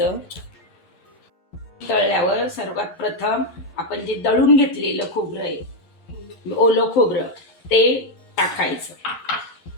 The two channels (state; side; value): late; right; 11 ms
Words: तळल्यावर सर्वात प्रथम आपण जे दळून घेतलेलं खोबरं आहे, ओलं खोबरं, ते टाकायचं